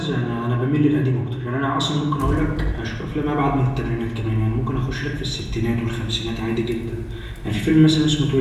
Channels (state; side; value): identical; both; correlation 1.00